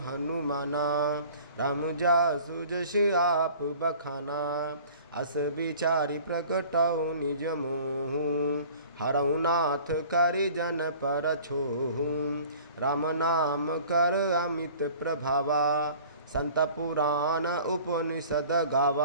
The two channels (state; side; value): inverted; both; correlation -0.47